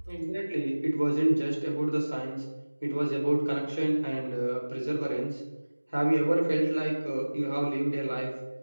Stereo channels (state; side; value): inverted; both; correlation -1.00